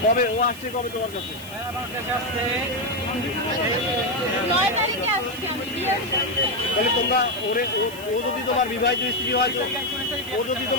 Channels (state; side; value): noise; right; hiss, 16 dB below the sound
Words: কবে ও আসছে, কবে তোমার কাছে? তাহলে তোমরা ও যদি তোমার বিবাহিত স্ত্রী হয়, ও যদি